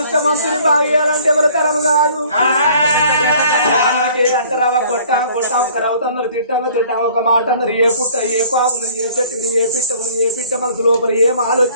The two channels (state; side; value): inverted; both; correlation -0.53